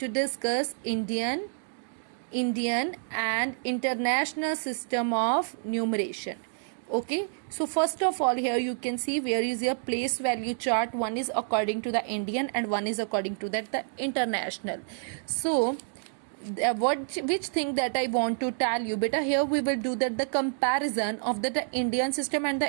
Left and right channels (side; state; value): left; silent; digital silence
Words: discuss: Indian and international system of numeration. Okay, so first of all, here you can see where is your place value chart. One is according to the Indian and one is according to that the international. So which thing that I want to tell you, beta, here we will do that the comparison of the Indian system and